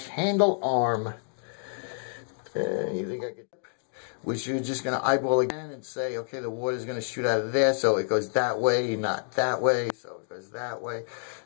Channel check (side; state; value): right; silent; 59 dB below the other